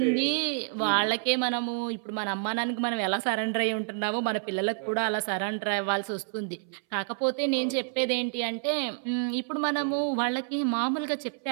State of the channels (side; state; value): left; silent; 59 dB below the other